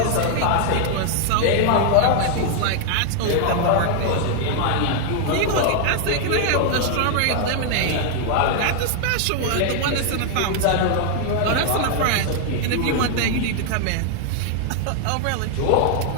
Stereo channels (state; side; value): different; both; correlation 0.00